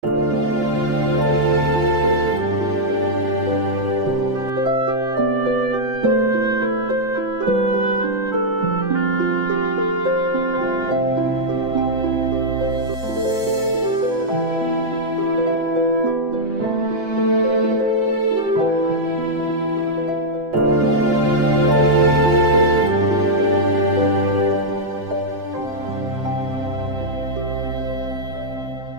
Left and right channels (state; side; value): late; left; 7.8 ms